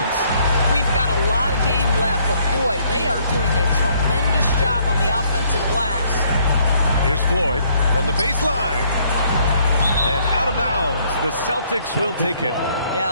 We've got a lot of game left, but boy, they are doing a tremendous job on the offensive glass. Here's Floyd from the baseline. And out of bounds, the Celtics will take it.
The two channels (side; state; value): both; inverted; correlation -0.65